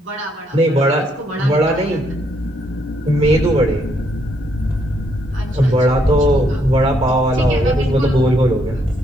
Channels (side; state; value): both; normal; correlation 0.73